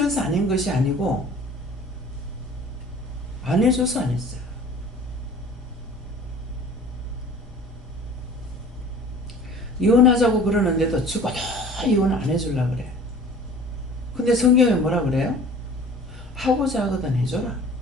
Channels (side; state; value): both; normal; correlation 0.46